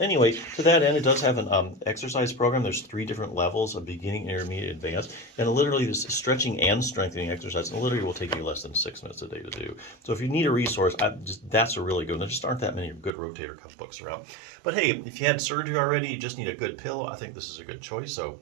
to that end, it does have an exercise program. There's 3 different levels of beginning, intermediate, advanced. And literally this stretching and strengthening exercise literally will take you less than 6 minutes a day to do. So if you need a resource, that's a really good one. There just aren't that many good rotator cuff books around. But hey, if you had surgery already, you just need a good pillow, I think this is a good choice. So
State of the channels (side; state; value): left; drops out; at 13.1 s